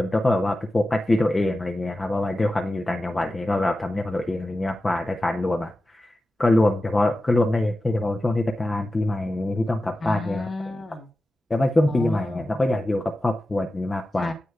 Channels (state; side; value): normal; both; correlation 0.93